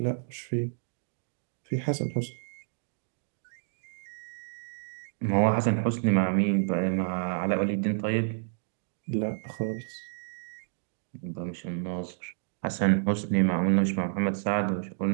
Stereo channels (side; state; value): left; silent; digital silence